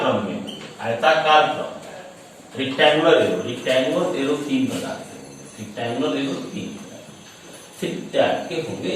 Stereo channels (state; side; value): identical; both; correlation 1.00